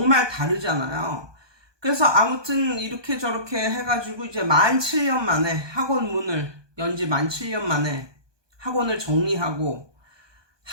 다르잖아요. 그래서 아무튼 이렇게 저렇게 해가지고 이제 17년 만에 학원 문을 연지 17년 만에 학원을 정리하고,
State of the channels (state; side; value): late; left; 1.2 ms